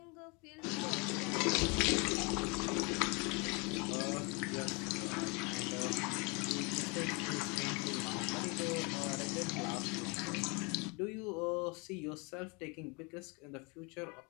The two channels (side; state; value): right; quieter; 30.3 dB